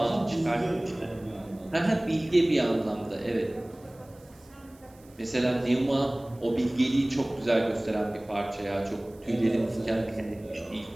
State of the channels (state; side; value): noise; right; hiss, 28 dB below the sound